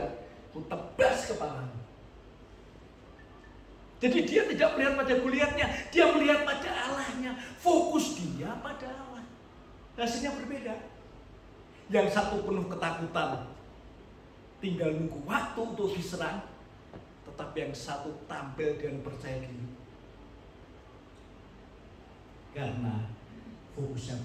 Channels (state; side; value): identical; both; correlation 1.00